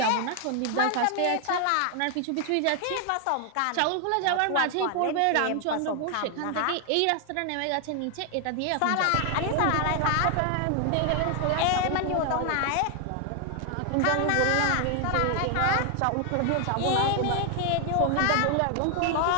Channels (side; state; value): both; different; correlation 0.00